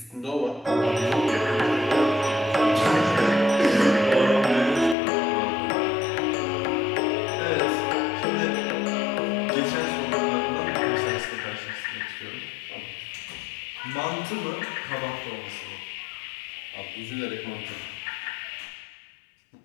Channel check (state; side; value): drops out; right; at 5.0 s